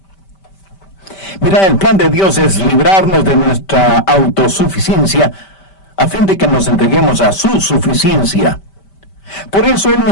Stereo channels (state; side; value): late; right; 5.1 ms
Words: Mira, el plan de Dios es librarnos de nuestra autosuficiencia a fin de que nos entreguemos a su suficiencia. Por eso Él